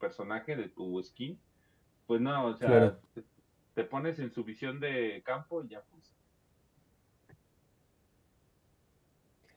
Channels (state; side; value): identical; both; correlation 1.00